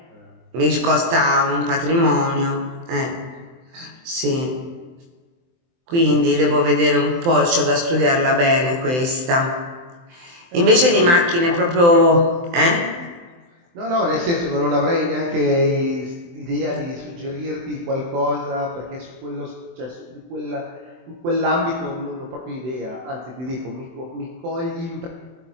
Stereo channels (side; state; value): left; late; 23 ms